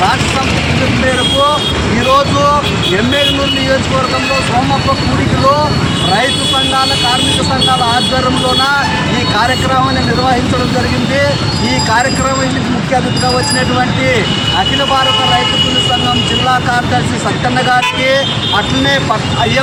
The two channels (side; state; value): both; identical; correlation 1.00